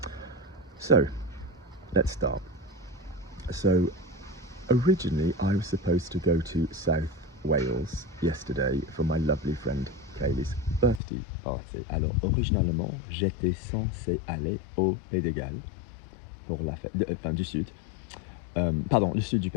So, let's start. So, originally I was supposed to go to South Wales yesterday for my lovely friend Kaylee's birthday party. Alors, originalement, j'étais censé aller au Pays de Galles pour la fête, du Sud. Pardon, le Sud du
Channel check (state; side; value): drops out; right; at 11.0 s